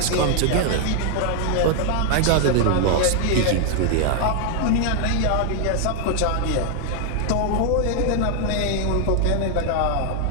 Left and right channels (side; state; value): both; different; correlation 0.00